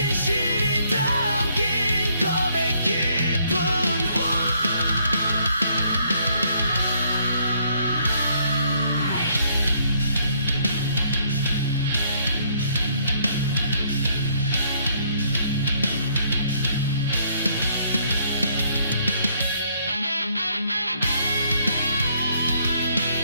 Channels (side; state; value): both; inverted; correlation -0.67